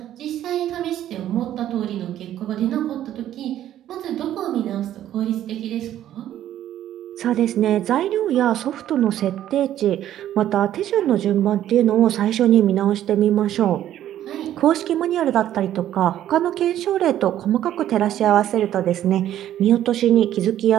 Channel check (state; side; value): quieter; left; 11.9 dB